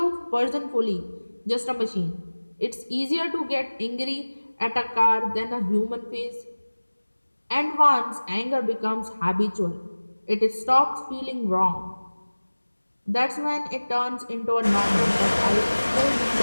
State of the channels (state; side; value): inverted; both; correlation -1.00